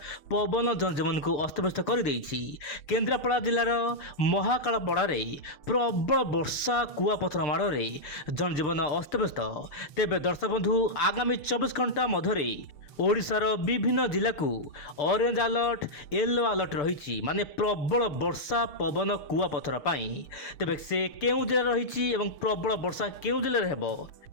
पवन जनजीवन को अस्तव्यस्त कर केन्द्रापड़ा जिलार महाकालपड़ारे प्रबल वर्षा कुआपथर माड़े जनजीवन अस्तव्यस्त। तेबे दर्शक बंधु आगामी 24 घंटा मध्य ओडिशार विभिन्न जिला को ऑरेंज अलर्ट येलो अलर्ट रही माने प्रबल वर्षा पवन कुआपथर पाई। तेबे से केउ जिला रही एवं प्रबल वर्षा केउ जिले हेबो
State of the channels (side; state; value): right; late; 6.8 ms